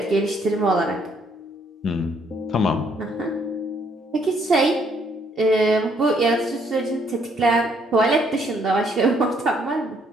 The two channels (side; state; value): both; normal; correlation 0.68